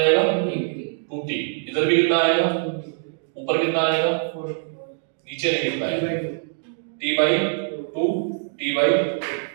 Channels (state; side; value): silent; left; digital silence